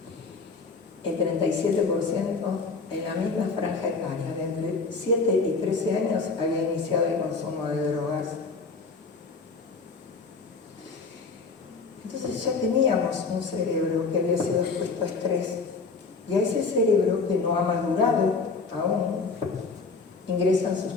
El 37% en la misma franja etaria, de entre 7 y 13 años, había iniciado el consumo de drogas. Entonces ya teníamos un cerebro que había sido expuesto a estrés, y a ese cerebro que no ha madurado aún, ingresan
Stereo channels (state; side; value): quieter; right; 4.3 dB